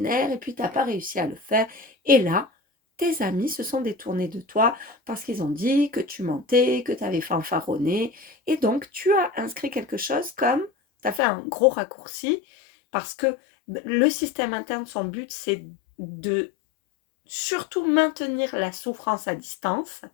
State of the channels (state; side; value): drops out; right; at 11.2 s